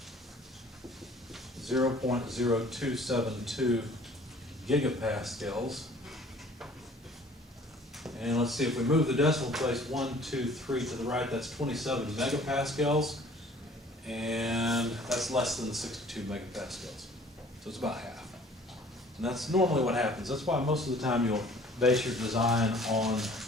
0.0272 gigapascals. And let's see, if we move the decimal place 1, 2, 3 to the right, that's 27 megapascals. And that's less than the 62 megapascals. So it's about half. And that's normally what happens. That's why most of the time you'll base your design on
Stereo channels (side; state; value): both; normal; correlation 0.52